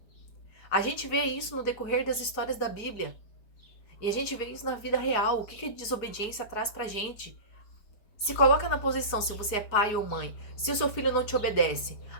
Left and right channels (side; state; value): right; late; 4.8 ms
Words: A gente vê isso no decorrer das histórias da Bíblia. E a gente vê isso na vida real. O que a desobediência traz pra gente? Se coloca na posição, se você é pai ou mãe, se o seu filho não te obedece,